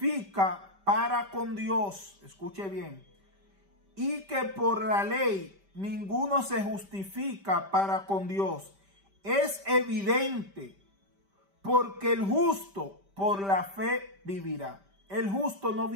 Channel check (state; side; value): late; left; 5.1 ms